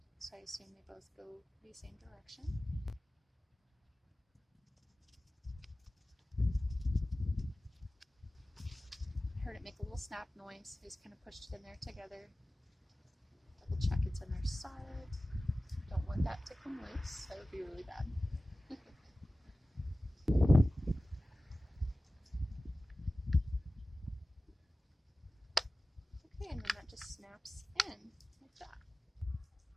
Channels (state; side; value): normal; both; correlation 0.96